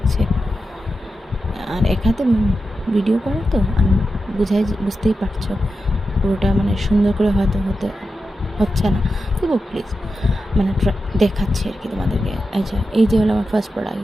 আর এক হাতে ভিডিও করা তো আমি বুঝতেই পারছো, পুরোটা মানে সুন্দর করে হয়তো হচ্ছে না। তবু প্লিজ মানে দেখাচ্ছি আর কি তোমাদেরকে। আচ্ছা, এই যে হলো আমার ফার্স্ট প্রোডাক্ট।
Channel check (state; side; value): normal; both; correlation 0.90